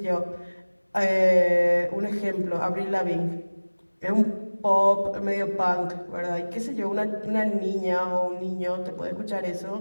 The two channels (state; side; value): inverted; both; correlation -1.00